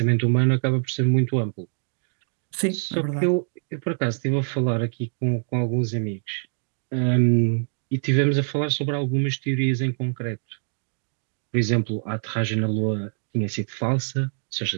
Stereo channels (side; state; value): left; silent; 62 dB below the other